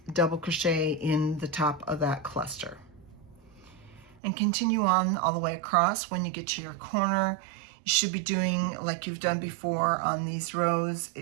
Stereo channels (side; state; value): left; drops out; at 4.2 s